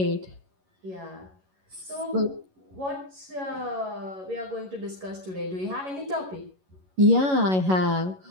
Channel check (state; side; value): late; left; 11 ms